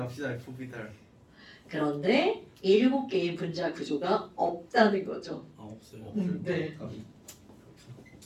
F오비탈. 그런데 7개의 분자 구조가 없다는 거죠. 아 없어요. 네.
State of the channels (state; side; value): identical; both; correlation 1.00